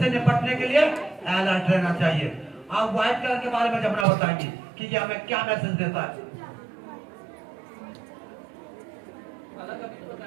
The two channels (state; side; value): drops out; left; at 4.0 s